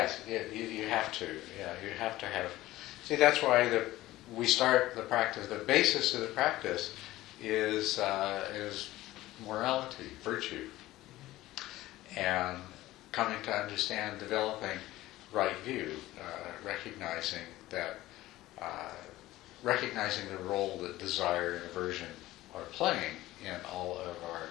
you have to. Yeah, you have to have. See, that's why we start the practice. The basis of the practice is morality, virtue, and coming to understand, developing right view, recognizing the role that desire and aversion are playing in all of our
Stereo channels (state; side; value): quieter; right; 16.6 dB